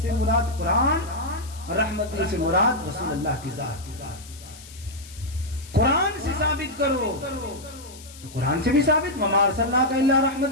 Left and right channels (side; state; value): left; noise; hiss, 19 dB below the sound